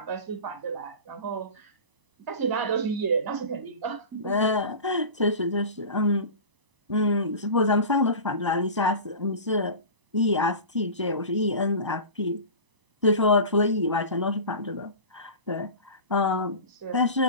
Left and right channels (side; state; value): left; late; 1.0 ms